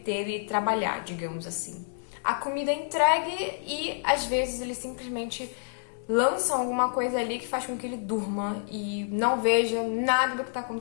e trabalhar, digamos assim. A comida é entregue e às vezes eles simplesmente lançam alguma coisa ali que faz com que ele durma e não veja nada do que está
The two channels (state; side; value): silent; right; digital silence